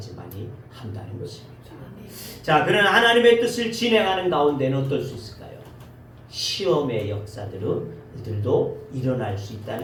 한다는 것입니다. 자, 그런 하나님의 뜻을 진행하는 가운데는 어떨 수 있을까요? 시험의 역사들도 일어날 수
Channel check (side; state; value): both; identical; correlation 1.00